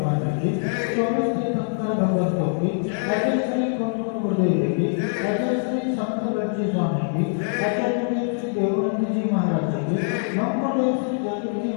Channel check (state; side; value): silent; right; 63 dB below the other